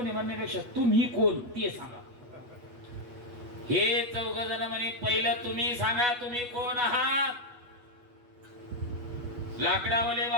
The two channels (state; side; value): late; left; 8.2 ms